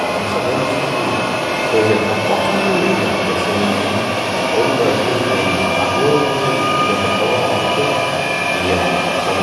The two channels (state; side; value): identical; both; correlation 1.00